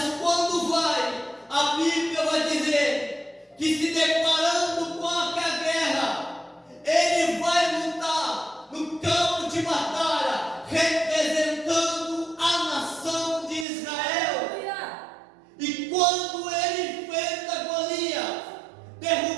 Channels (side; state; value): left; drops out; at 13.7 s